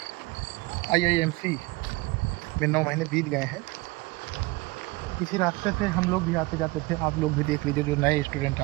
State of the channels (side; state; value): left; quieter; 22.5 dB